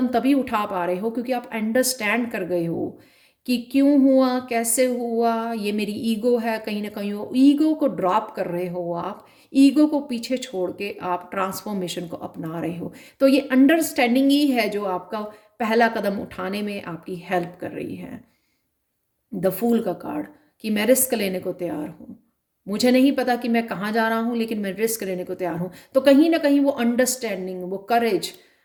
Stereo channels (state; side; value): identical; both; correlation 1.00